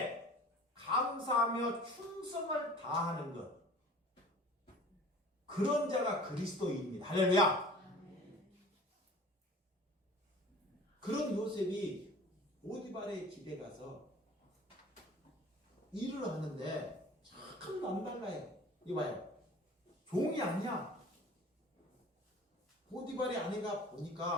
감사하며 충성을 다하는 것, 그런 자가 그리스도입니다. 할렐루야. 그런 요셉이 보디발의 집에 가서 일을 하는데 참 남달라요. 이봐요, 종이 아니야. 보디발의 아내가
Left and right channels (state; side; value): normal; both; correlation 0.45